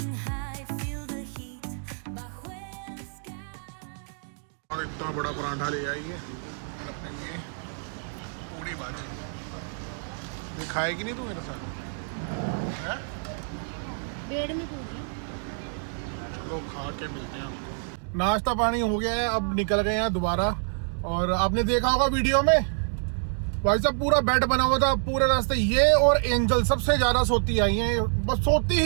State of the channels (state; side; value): silent; left; 60 dB below the other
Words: high, feel the heat bajo el sky. और इतना बड़ा पराठा ले आइए, और अपने लिए पूरी भाजी। ये खाएगी नहीं तू मेरे साथ है? बेड में पूरी। चलो खा के मिलते हैं आपको। नाश्ता पानी हो गया है, अब निकल गए हैं दोबारा। और आपने देखा होगा वीडियो में, भाई साहब पूरा बेड बना हुआ था पूरे रास्ते। ये और एंजल सबसे ज्यादा सोती आई हैं, बस सोती ही